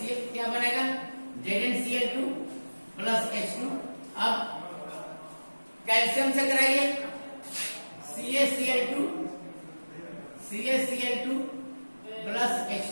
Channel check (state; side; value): inverted; both; correlation -1.00